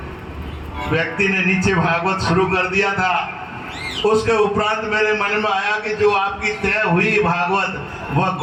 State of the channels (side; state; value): both; identical; correlation 1.00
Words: व्यक्ति ने नीचे भागवत शुरू कर दिया था। उसके उपरांत मेरे मन में आया कि जो आपकी तय हुई भागवत वह